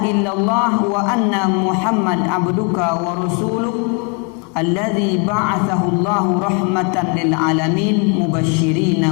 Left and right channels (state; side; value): quieter; right; 33.4 dB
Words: illallah wa anna Muhammad abduka wa rasuluh alladzi ba'athahu Allahu rahmatan lil alamin mubasysyirin